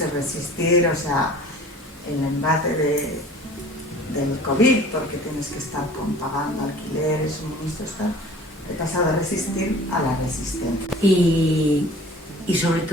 resistir, o sea, el embate del COVID, porque tienes que estar pagando alquileres, suministros, tal. He pasado de resistir a la resistencia. Y sobre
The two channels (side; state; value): both; normal; correlation 0.46